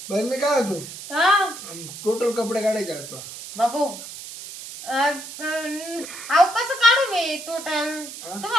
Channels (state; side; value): noise; right; hiss, 12 dB below the sound